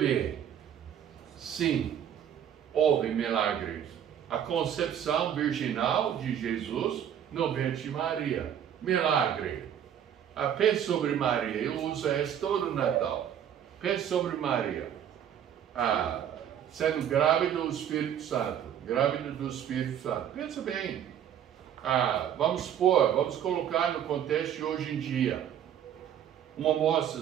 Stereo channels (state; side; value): quieter; left; 9.6 dB